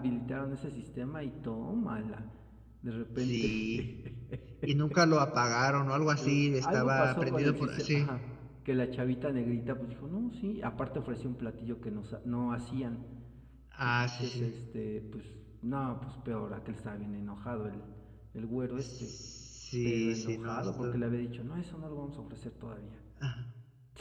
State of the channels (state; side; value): identical; both; correlation 1.00